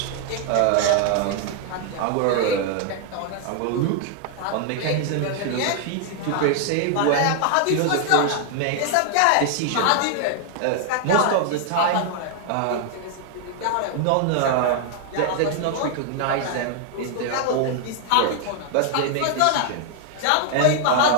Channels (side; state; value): both; different; correlation 0.00